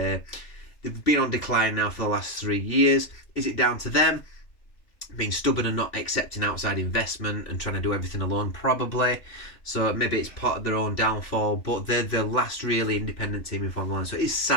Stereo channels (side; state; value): right; late; 2.7 ms